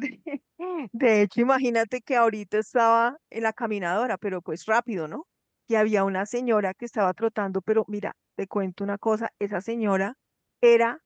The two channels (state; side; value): identical; both; correlation 1.00